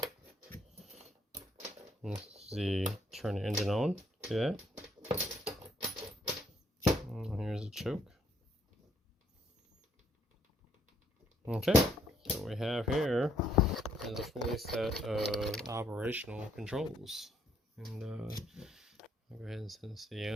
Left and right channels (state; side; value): normal; both; correlation 0.69